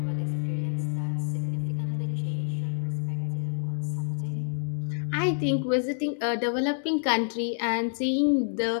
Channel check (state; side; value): silent; right; digital silence